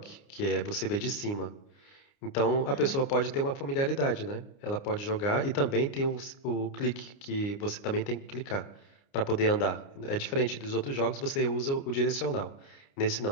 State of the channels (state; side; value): late; right; 29 ms